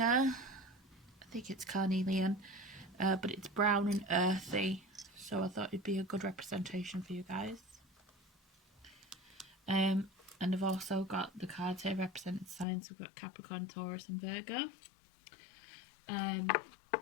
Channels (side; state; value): right; drops out; at 12.7 s